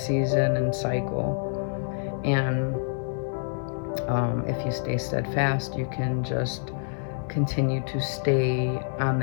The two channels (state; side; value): silent; right; digital silence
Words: and cycle. And if you stay steadfast, you can just continue to stay on